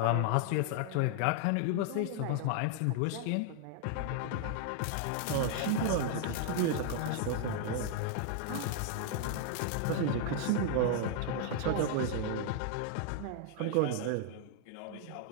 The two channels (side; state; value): both; different; correlation 0.00